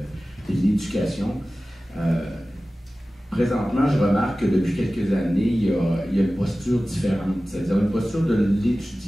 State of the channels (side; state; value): both; normal; correlation 0.96